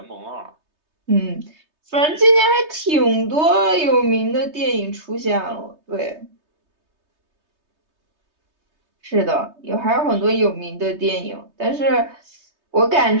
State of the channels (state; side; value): late; left; 3.2 ms